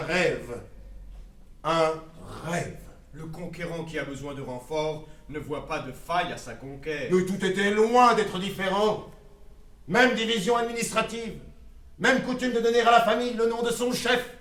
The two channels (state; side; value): identical; both; correlation 1.00